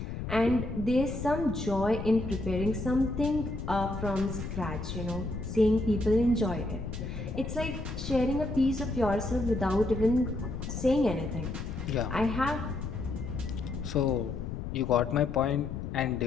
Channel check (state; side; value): noise; left; rumble, 6 dB below the sound